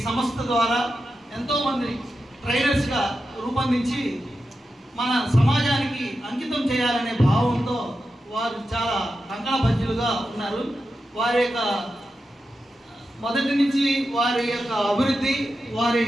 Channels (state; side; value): normal; both; correlation 0.90